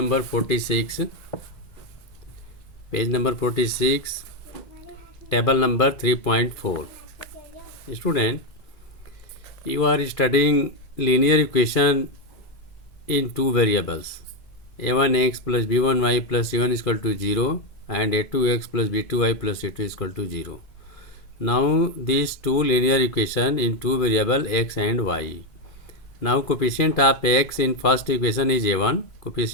46, table number 3.4. Student, you are studying linear equation in two variables, a1x plus b1y plus c1 is equal to 0 and a2x plus b2y plus c2 is equal to 0. Now these two linear equation in two variable x and y. Now coefficient of x in first equation is a1,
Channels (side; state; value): right; late; 2.5 ms